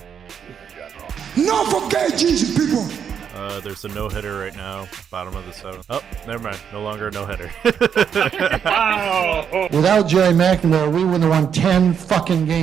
in general. Not forget Jesus, people! There's a no-hitter right now, bottom of the seventh. Oh, never mind. No longer a no-hitter. Without Jerry McNamara, we wouldn't have won 10 fucking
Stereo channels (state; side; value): quieter; left; 7.7 dB